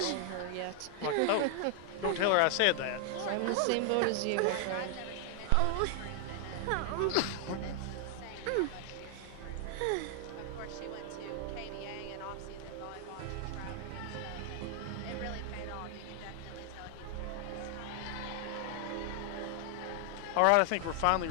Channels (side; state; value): both; different; correlation 0.00